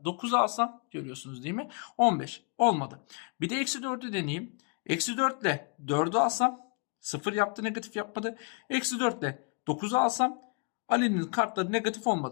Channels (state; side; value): quieter; right; 35.8 dB